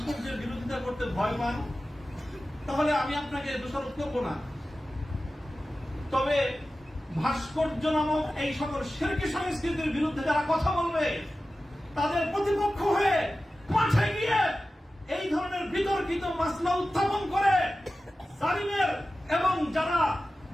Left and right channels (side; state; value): both; normal; correlation 0.95